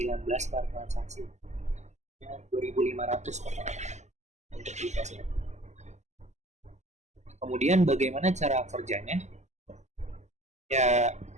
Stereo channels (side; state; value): left; late; 0.33 ms